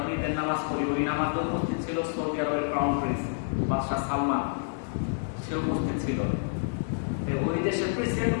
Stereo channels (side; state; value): right; silent; 59 dB below the other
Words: ঈদের নামাজ পড়ি, ওই নামাজে উপস্থিত ছিল সৌদি আরবের ক্রাউন প্রিন্স বাদশাহ সালমান, সে উপস্থিত ছিল। ওই দেশের প্রেসিডেন্ট